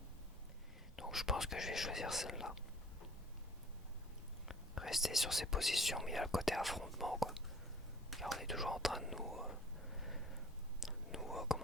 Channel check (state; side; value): normal; both; correlation 0.50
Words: Donc je pense que je vais choisir celle-là. Rester sur ces positions, mais il y a le côté affrontement, quoi. Car on est toujours en train de